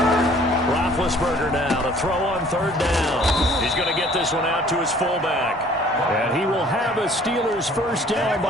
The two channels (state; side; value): normal; both; correlation 0.54